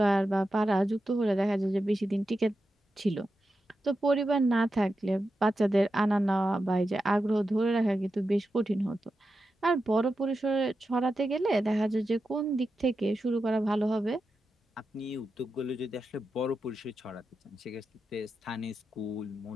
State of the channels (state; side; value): normal; both; correlation 0.89